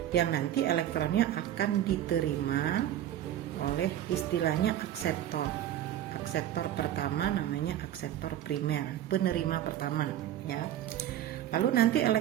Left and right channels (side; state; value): left; quieter; 11.8 dB